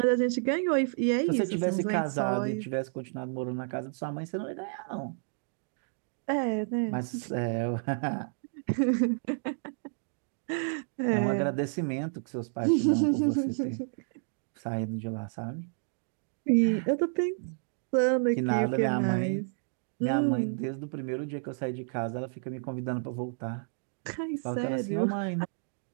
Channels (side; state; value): left; silent; digital silence